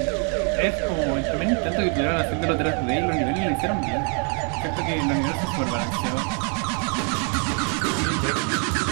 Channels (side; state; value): left; quieter; 39.5 dB